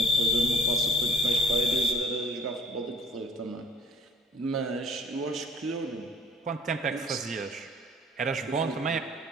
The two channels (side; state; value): both; normal; correlation 0.55